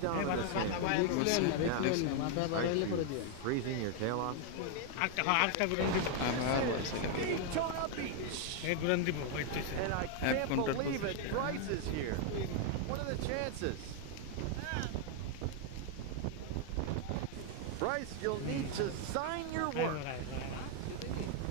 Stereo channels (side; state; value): both; different; correlation 0.00